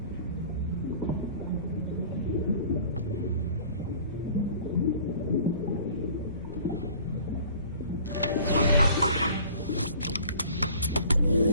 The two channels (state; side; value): inverted; both; correlation -0.48